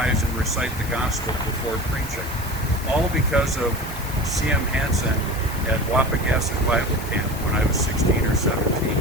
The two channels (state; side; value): noise; left; hiss, 16 dB below the sound